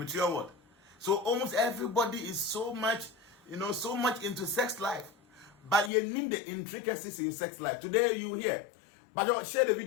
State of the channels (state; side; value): drops out; right; at 5.9 s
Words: world. So almost everybody is so much, so much into sex life. But you need the intricacies in sex life. Today you hear, but you share the